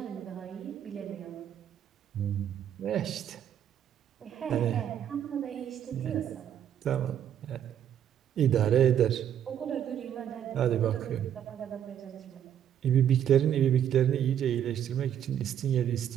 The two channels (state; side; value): quieter; left; 9.8 dB